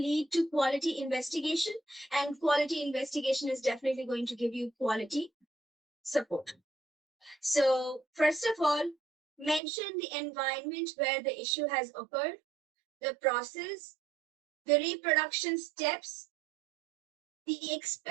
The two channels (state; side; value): drops out; left; at 9.6 s